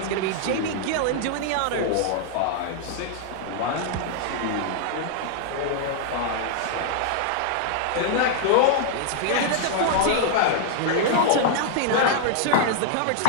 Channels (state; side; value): different; both; correlation -0.01